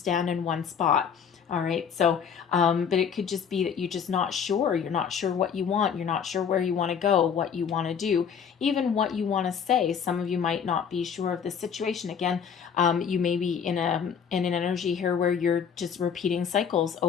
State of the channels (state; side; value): quieter; right; 7.3 dB